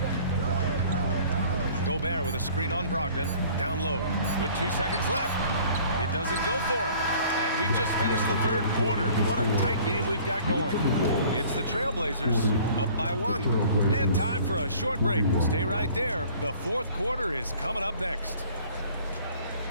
Gobert with a screen on Brogdon. Down low with 2 seconds left. It doesn't go for him. And we've just finished the third quarter. What a tight game we've got going. It's the Trailblazers up by 1. And time for a short break. Stay right there. The fourth quarter is coming up next.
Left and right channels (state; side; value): inverted; both; correlation -0.52